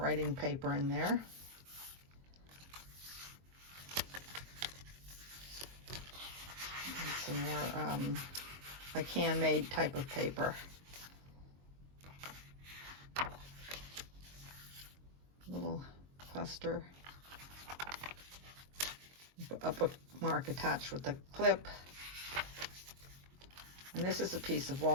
paper in there. And some more like handmade type of paper. Little cluster. A bookmark attached with a clip. And this is a piece of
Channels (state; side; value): late; left; 22 ms